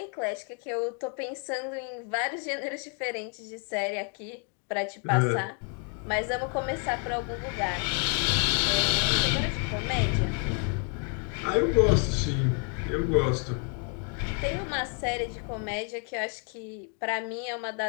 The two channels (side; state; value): right; quieter; 38.9 dB